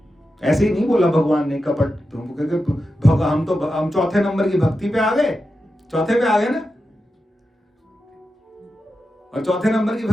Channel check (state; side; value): normal; both; correlation 0.90